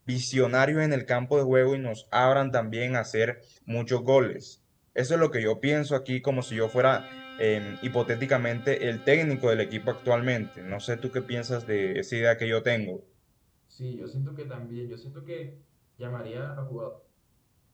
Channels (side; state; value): both; identical; correlation 1.00